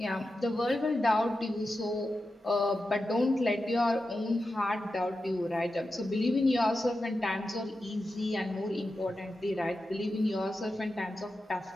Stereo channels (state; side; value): normal; both; correlation 0.91